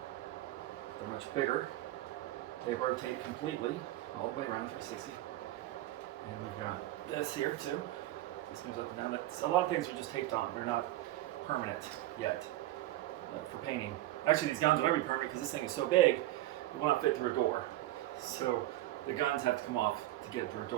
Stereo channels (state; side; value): quieter; left; 15.6 dB